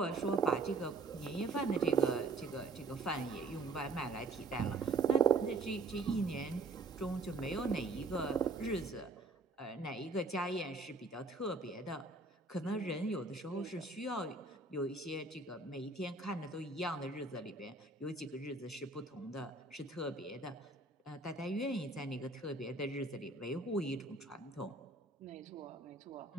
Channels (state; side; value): quieter; left; 3.6 dB